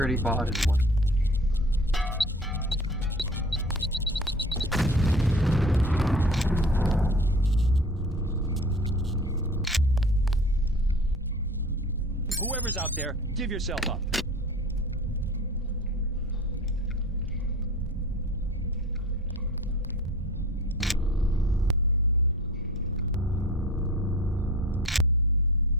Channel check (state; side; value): normal; both; correlation 0.41